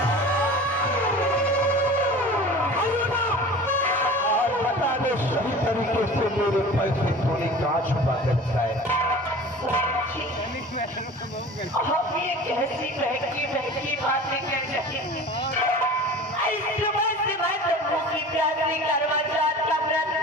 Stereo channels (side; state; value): both; normal; correlation 0.39